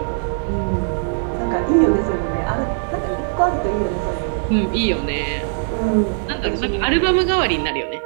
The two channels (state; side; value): silent; left; digital silence